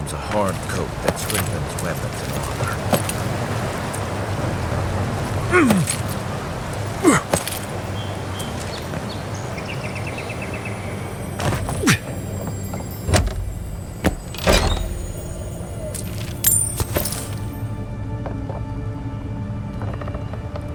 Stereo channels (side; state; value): both; identical; correlation 1.00